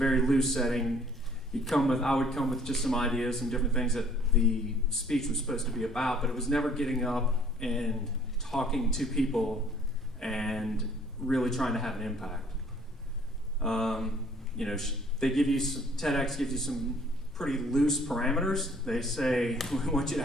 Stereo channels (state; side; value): normal; both; correlation 0.58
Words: loose setting. I would come with just some ideas and different things that the speech was supposed to be about, but it was never getting up and talking to people and really trying to have an impact. They give you TEDx gives you some pretty loose parameters. They say, we want you to